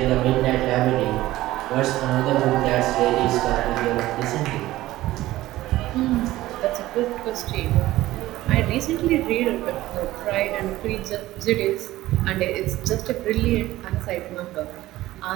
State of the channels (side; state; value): left; quieter; 16.3 dB